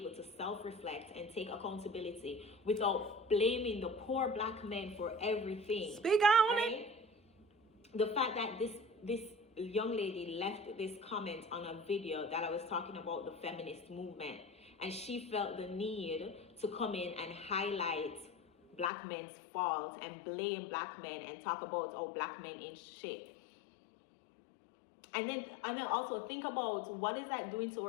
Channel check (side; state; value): right; drops out; at 18.9 s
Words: to self-reflect and take accountability without blaming the poor Black men for everything. Speak on it. The fact that this young lady left this comment on a video that I was talking about the feminist movement, and she felt the need to come in and highlight Black men's faults and blame Black men and talk about, oh, Black men ain't shit. And then also think about, what is that doing to